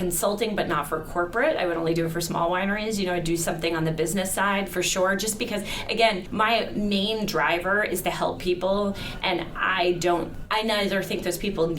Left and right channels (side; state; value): both; identical; correlation 1.00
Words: but not for corporate. I would only do it for small wineries. You know, I'd do something on the business side for sure, just because, again, my main driver is to help people, and I neither think those people